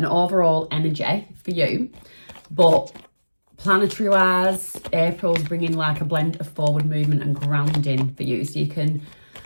energy for you, but planetary wise, April's bringing like a blend of forward movement and grounding for you, so you can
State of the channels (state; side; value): inverted; both; correlation -1.00